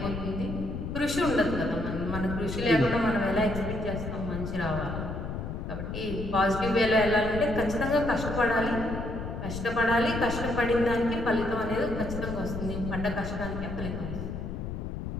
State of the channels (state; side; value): noise; left; rumble, 5 dB below the sound